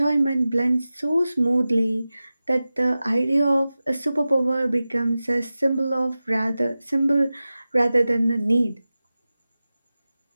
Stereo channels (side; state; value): both; inverted; correlation -0.95